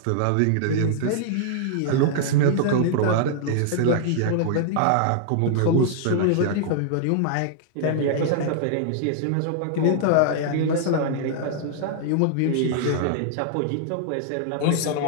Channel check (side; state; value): both; different; correlation -0.01